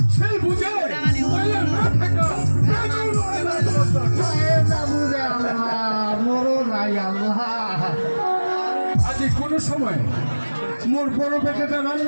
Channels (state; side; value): inverted; both; correlation -1.00